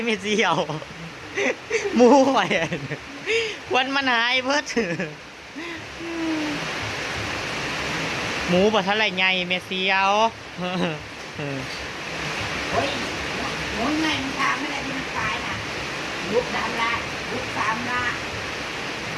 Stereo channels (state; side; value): identical; both; correlation 1.00